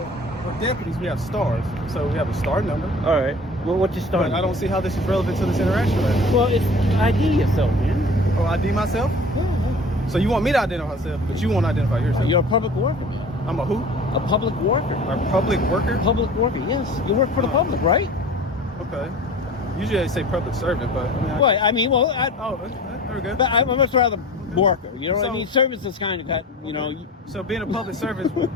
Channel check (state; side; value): normal; both; correlation 0.42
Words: we're deputies, we have stars. So we have a star number. All right. Well, what's your star But number? I don't see how this is relevant to this interaction right now. Well, it's ID yourself, man. Oh, ID myself? Yeah. So you want me to identify myself, but you won't identify yourself. You're a public worker, man. I'm a who? A public worker. A public worker? Public worker, yes. You work for the public, right? Okay. Usually they say public servant, but I mean, oh, very good. but I'm much rather worker. You know what I So- mean? Service is kind of got, you know, So being a public servant,